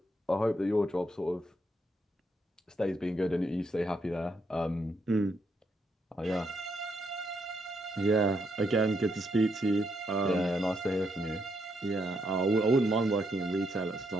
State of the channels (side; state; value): both; normal; correlation 0.78